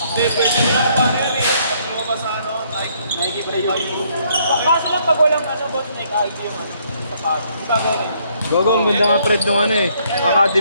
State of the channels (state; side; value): inverted; both; correlation -0.68